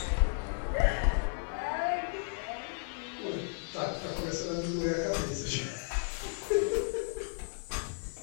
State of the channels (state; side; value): silent; right; 55 dB below the other